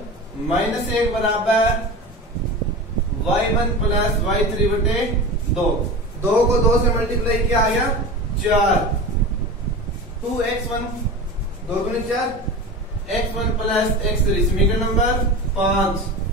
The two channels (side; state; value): both; normal; correlation 0.30